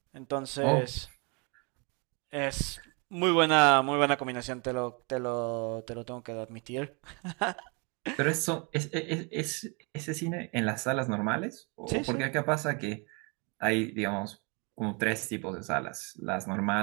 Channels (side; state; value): left; quieter; 32.5 dB